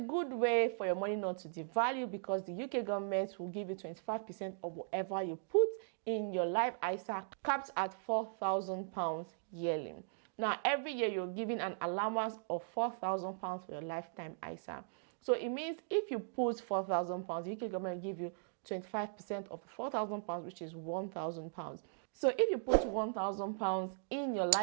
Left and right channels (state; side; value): silent; left; digital silence